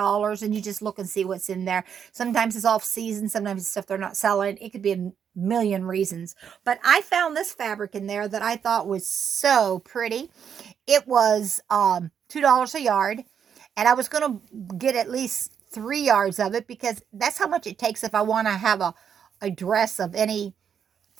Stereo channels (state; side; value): quieter; left; 7.8 dB